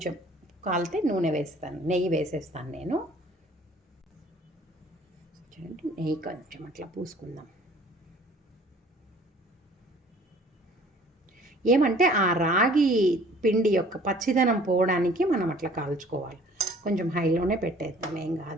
కాలితే నూనె వేస్తాను, నెయ్యి వేసేస్తాను నేను. చూడండి, నెయ్యి కొంచెం అట్లా పూసుకుందాం. ఏమంటే ఆ రాగి పిండి యొక్క పచ్చిదనం పోవడానికి మనం అట్లా కాల్చుకోవాలి. కొంచెం హైలోనే పెట్టేద్దాం, ఏం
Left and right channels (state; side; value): normal; both; correlation 0.53